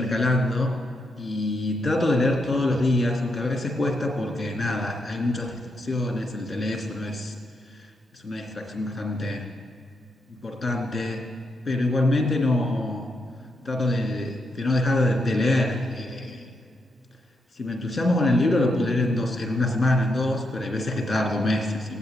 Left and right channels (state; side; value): normal; both; correlation 0.81